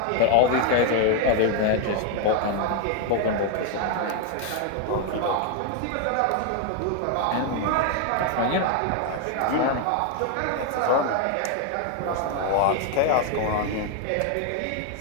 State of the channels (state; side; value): different; both; correlation 0.01